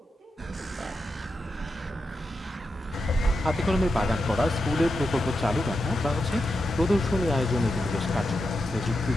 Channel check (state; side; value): normal; both; correlation 0.88